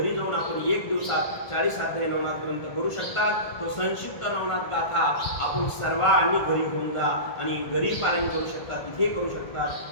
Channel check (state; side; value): late; right; 1.4 ms